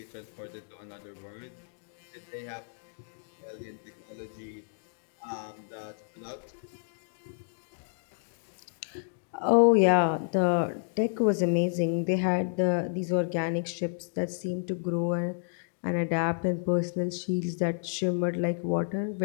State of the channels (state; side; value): silent; right; digital silence